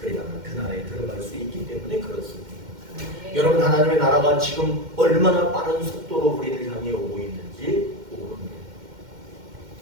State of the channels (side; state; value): left; late; 2.1 ms